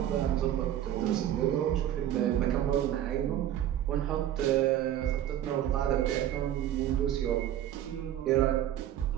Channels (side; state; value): left; quieter; 11.6 dB